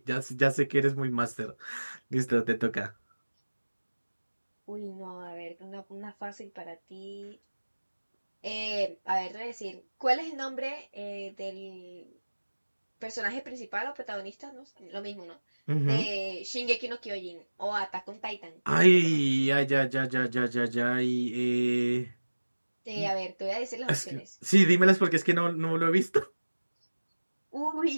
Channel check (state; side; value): inverted; both; correlation -1.00